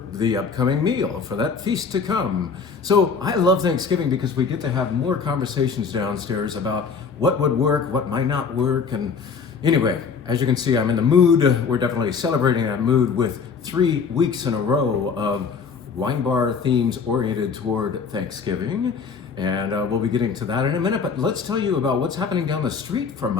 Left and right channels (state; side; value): quieter; right; 5.7 dB